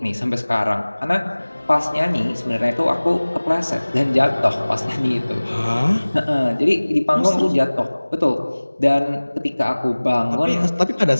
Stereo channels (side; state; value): both; inverted; correlation -1.00